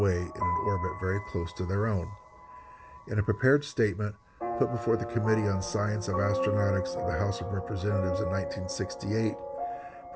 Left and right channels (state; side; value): identical; both; correlation 1.00